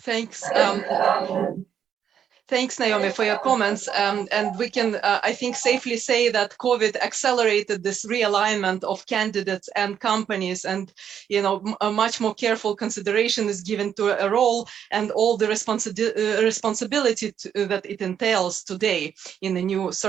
Thanks, Naomi, for your comments. And we can, I think, safely say that COVID accelerated this realignment of candidates and companies, and, you know, a much more careful consideration is given to a role and all the responsibility that it entails today in the new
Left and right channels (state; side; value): quieter; left; 8.7 dB